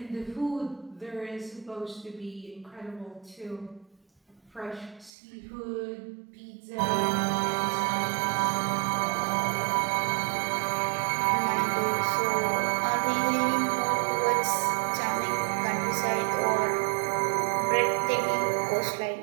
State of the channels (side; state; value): left; drops out; at 5.1 s